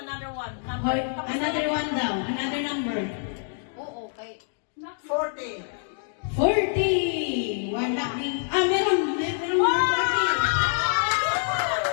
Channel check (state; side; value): silent; right; 61 dB below the other